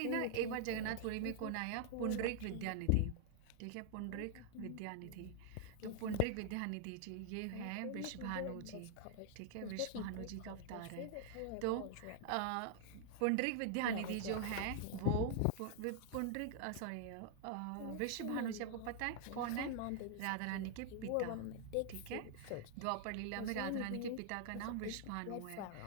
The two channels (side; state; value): both; different; correlation 0.00